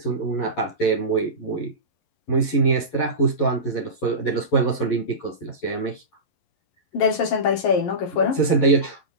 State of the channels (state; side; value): late; right; 11 ms